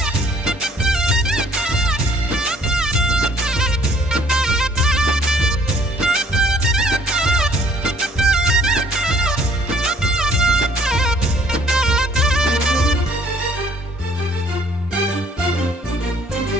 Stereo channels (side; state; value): both; normal; correlation 0.59